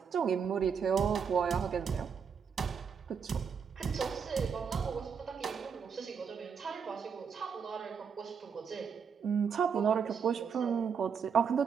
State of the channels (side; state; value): left; quieter; 6.5 dB